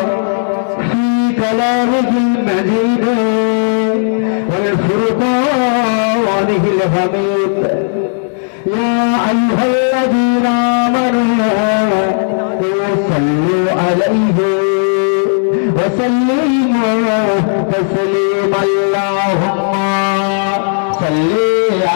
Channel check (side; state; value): right; silent; 71 dB below the other